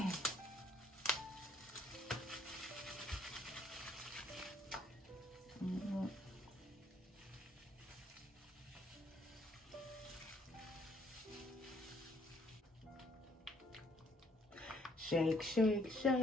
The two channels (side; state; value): both; normal; correlation 0.65